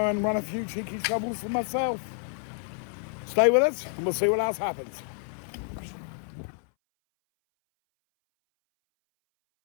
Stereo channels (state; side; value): silent; right; 59 dB below the other